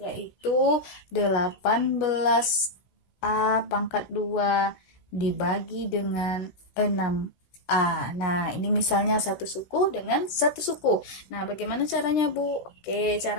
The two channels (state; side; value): late; right; 16 ms